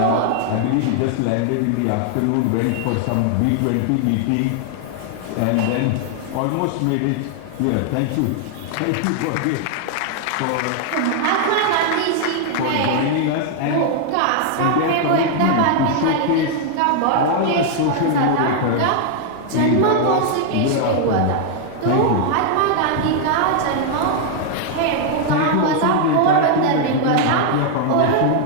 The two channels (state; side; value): different; both; correlation 0.00